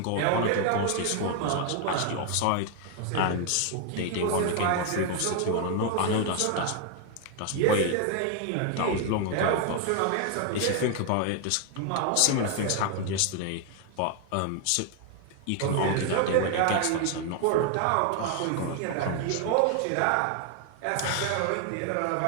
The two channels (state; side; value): different; both; correlation 0.00